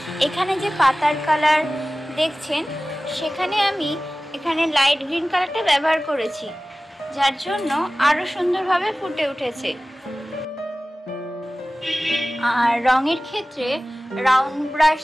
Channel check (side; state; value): both; normal; correlation 0.97